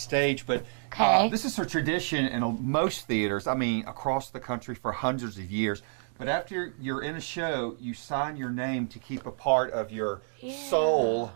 but this is a tradition in most theaters, across the country for hundreds of years. But after you're in a show, you sign your name to keep a part of your soul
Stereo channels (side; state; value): left; silent; 58 dB below the other